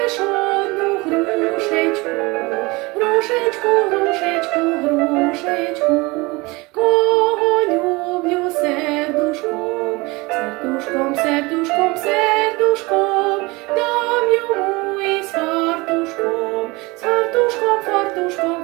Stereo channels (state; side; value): quieter; left; 24.2 dB